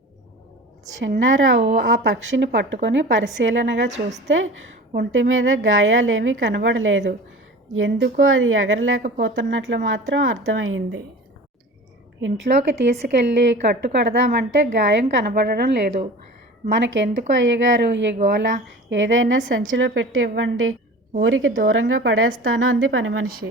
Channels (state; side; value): normal; both; correlation 0.38